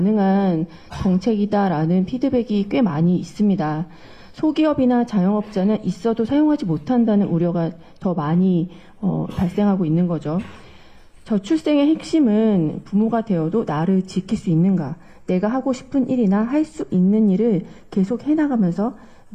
정책이다라는 피드백이 꽤 많이 있습니다. 소기업이나 자영업자는 있어도 사용하지 못한다는 우려가 더 많이 발생하고 있는 거죠. 저출생의 핵심은 부모가 되어도 나를 지킬 수 있는가, 내가 하고 싶은 일이나 할 수 있는 일을 계속 해나가면서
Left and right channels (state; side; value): identical; both; correlation 1.00